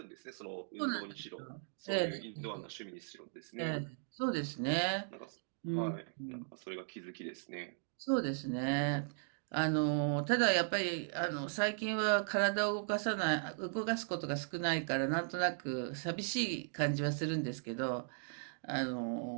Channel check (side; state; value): left; silent; digital silence